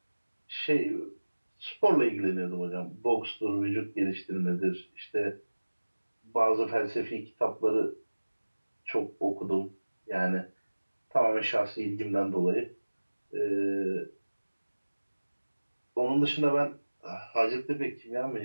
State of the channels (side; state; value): both; inverted; correlation -1.00